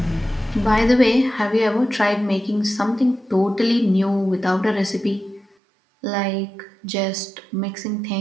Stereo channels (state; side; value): drops out; left; at 5.5 s